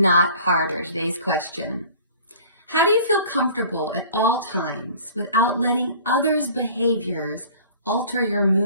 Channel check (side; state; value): both; inverted; correlation -0.47